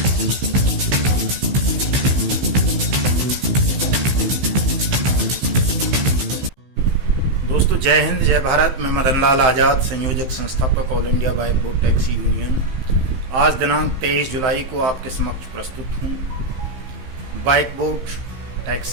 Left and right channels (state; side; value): late; left; 15 ms